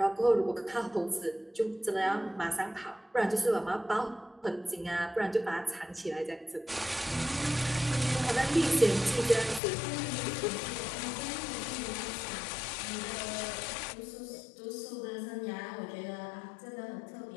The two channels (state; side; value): drops out; right; at 9.6 s